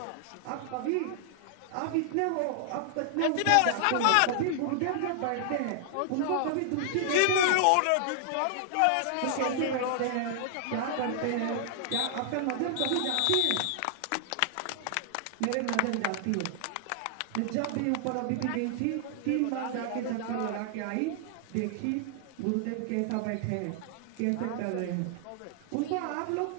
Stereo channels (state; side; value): different; both; correlation -0.01